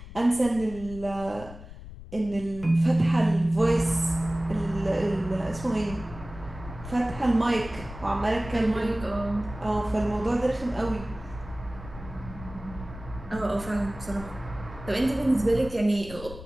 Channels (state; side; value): noise; left; rumble, 14 dB below the sound